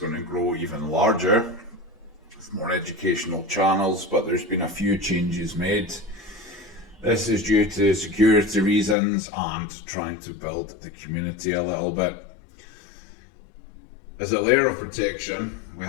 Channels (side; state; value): right; drops out; at 9.0 s